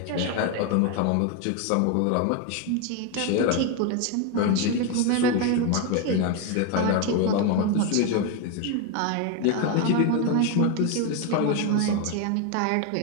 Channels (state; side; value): different; both; correlation 0.02